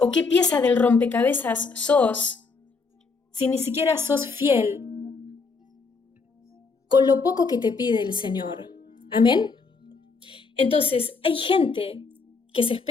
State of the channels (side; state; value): right; quieter; 4.5 dB